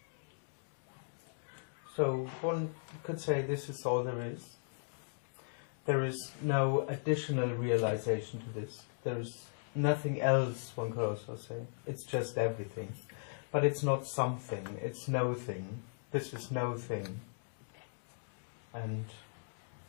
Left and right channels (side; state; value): right; silent; digital silence